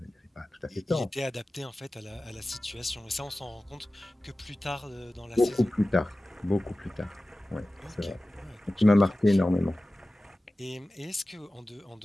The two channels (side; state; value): both; normal; correlation 0.96